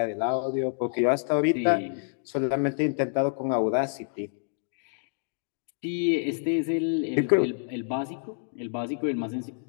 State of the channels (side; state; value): right; silent; digital silence